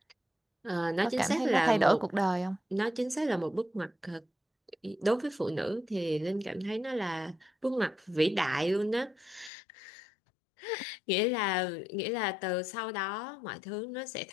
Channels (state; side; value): drops out; right; at 9.5 s